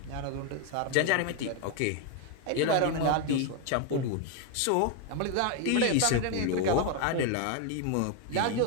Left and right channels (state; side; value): different; both; correlation 0.01